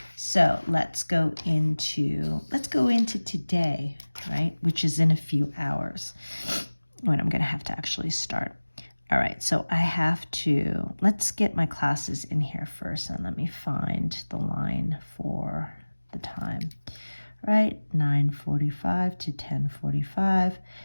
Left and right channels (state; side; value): inverted; both; correlation -1.00